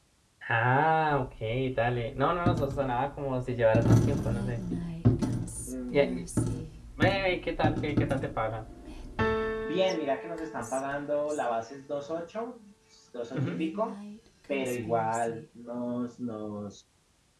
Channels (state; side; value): identical; both; correlation 1.00